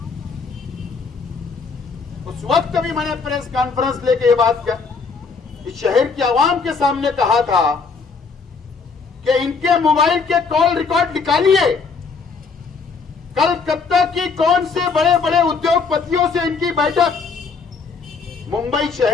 उस वक्त भी मैंने प्रेस कॉन्फ्रेंस लेके ये बात इस शहर की आवाम के सामने कहा था कि इनके मोबाइल के कॉल रिकॉर्ड निकालिए। कलकत्ता की कौन से बड़े बड़े उद्योगपतियों से इनकी बैठक मुंबई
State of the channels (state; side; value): quieter; right; 4.9 dB